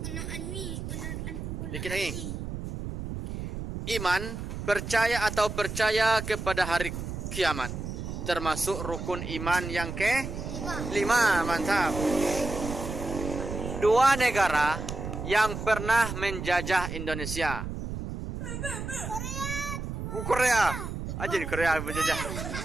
Dikit lagi. Iman, percaya percaya kepada hari kiamat, termasuk rukun iman yang ke-5, mantap. 2 negara yang pernah menjajah Indonesia. Korea. Aja di Korea menjajah.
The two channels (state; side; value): noise; right; rumble, 6 dB below the sound